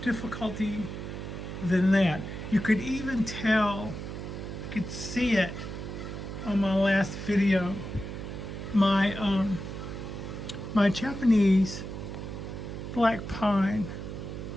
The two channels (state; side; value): noise; right; hum, 7 dB below the sound